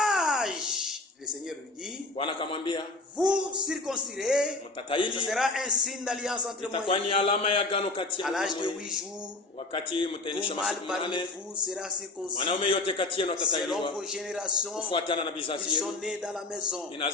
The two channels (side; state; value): right; quieter; 3.2 dB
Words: le Seigneur lui dit, Bwana akamwambia vous circoncirez, ce mtataili, sera un signe d'alliance entre moi itakuwa et ni vous. alama ya agano kati À yangu na l'âge de wewe. 8 jours, Wakati mtaendesha tout mâle masiku parmi 8, vous sera circoncis mwanaume yote kati yenu selon atatailiwa vos générations. kufuatana na vizazi Ils sont yenu. nés dans la maison,